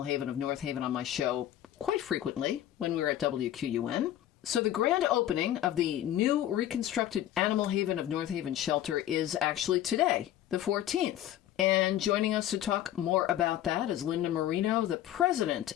Haven of North Haven, on my show quite frequently when we were at WQUN. So the grand opening of the new reconstructed Animal Haven of North Haven shelter is actually today, the 14th. And joining us to talk more about that is Linda Marino, the president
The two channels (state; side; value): quieter; right; 12.2 dB